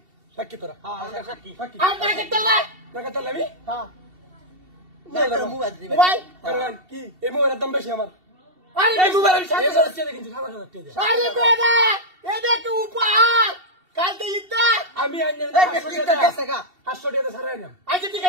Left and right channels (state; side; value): late; left; 2.7 ms